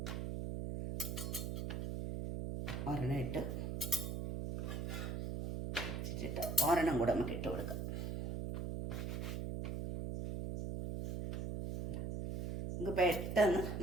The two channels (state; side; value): noise; right; hum, 3 dB below the sound